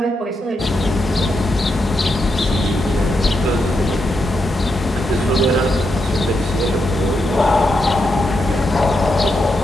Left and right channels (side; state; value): both; normal; correlation 0.83